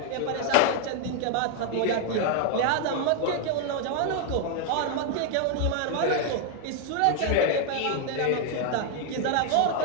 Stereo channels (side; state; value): both; different; correlation 0.00